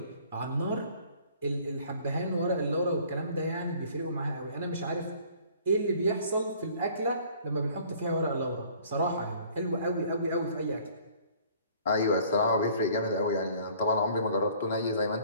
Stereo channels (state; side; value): inverted; both; correlation -0.54